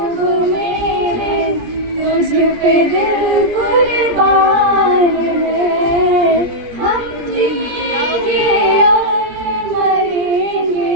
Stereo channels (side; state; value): left; late; 17 ms